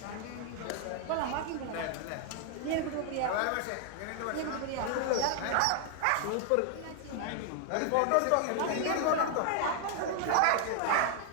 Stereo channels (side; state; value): both; different; correlation 0.00